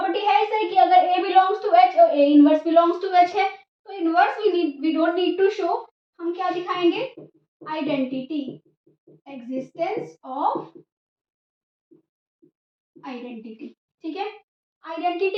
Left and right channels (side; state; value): both; identical; correlation 1.00